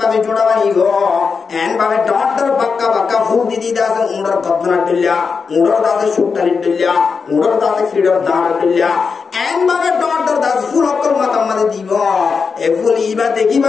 জোড়া বানি গো এন ভাবে ডটর বাক্কা বাক্কা ফুল দিদি দাসে উড়র গদনা দিল্লা উড়র দাসে সুট্টালি দিল্লা উড়র দাসে ফ্রিডম দাঁড় দিল্লা এন ভাবে ডটর দাস ফুল অকর মাথা মাঝে দিব এ ফুল ইবা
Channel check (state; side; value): quieter; right; 5.3 dB